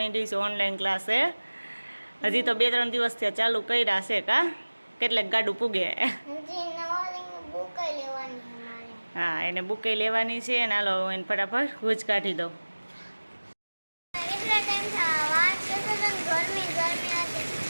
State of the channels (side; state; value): both; inverted; correlation -1.00